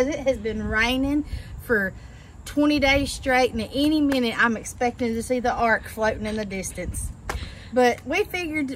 it has been raining for 20 days straight, and at any minute I'm expecting to see the ark floating in the distance. But we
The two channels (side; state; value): both; identical; correlation 1.00